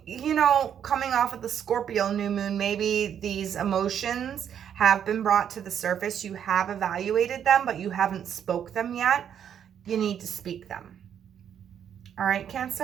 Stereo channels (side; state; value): left; quieter; 8.9 dB